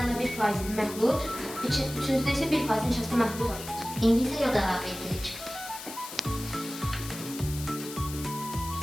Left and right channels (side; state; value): left; noise; hiss, 11 dB below the sound